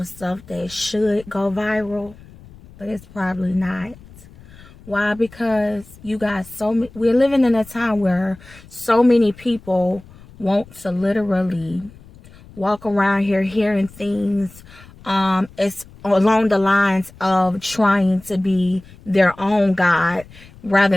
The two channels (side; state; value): left; noise; rumble, 22 dB below the sound